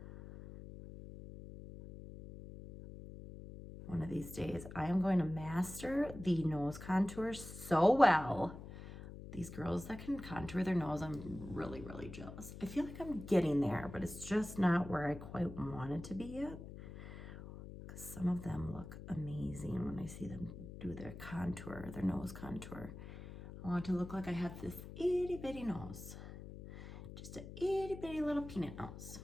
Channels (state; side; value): noise; left; hum, 12 dB below the sound